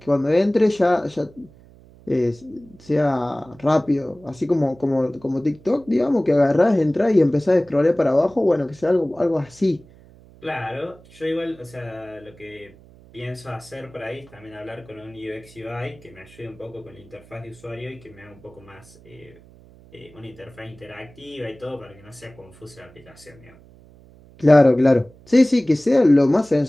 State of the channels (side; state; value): right; noise; hum, 24 dB below the sound